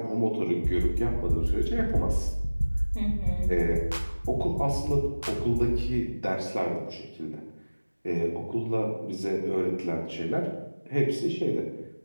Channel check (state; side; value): inverted; both; correlation -1.00